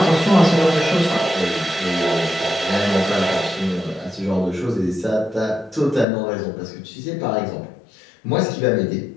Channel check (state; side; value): drops out; right; at 6.1 s